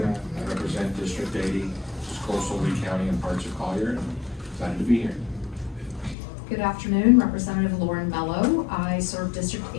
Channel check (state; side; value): drops out; right; at 6.2 s